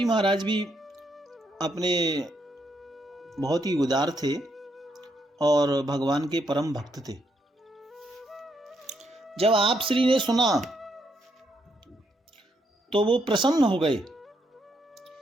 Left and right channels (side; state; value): both; normal; correlation 0.76